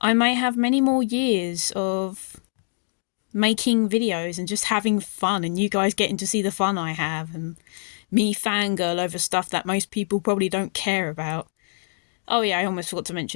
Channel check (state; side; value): silent; right; digital silence